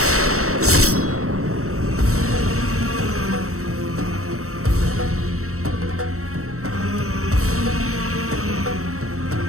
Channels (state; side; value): late; left; 0.64 ms